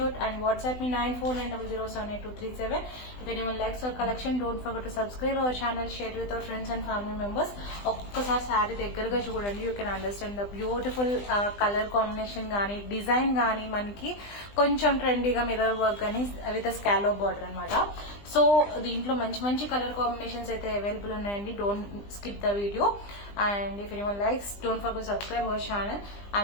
and WhatsApp me 9490078237. If anyone likes our collection, don't forget to subscribe our channel, share with our friends and family members. ఒక్కసారి సారీ దగ్గరగా చూడండి. You can understand the beautiful colour combination కానీ డిజైన్ కానీ మనకి కొంచెం ట్రెండీగా మిర్రర్ వర్క్ కానీ విత్ స్కాలోప్ బార్డర్ అనమాట. సో దీంట్లో మంచి మంచి కలర్ కాంబినేషన్స్ అయితే అవైలబుల్ ఉన్నాయండి. Don't skip the video and if anyone likes, don't forget to subscribe our channel.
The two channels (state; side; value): late; right; 20 ms